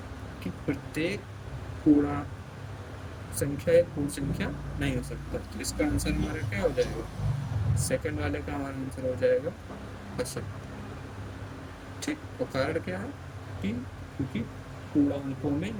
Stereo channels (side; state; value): both; identical; correlation 1.00